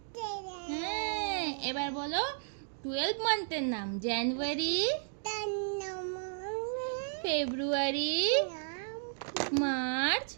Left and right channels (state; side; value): silent; left; digital silence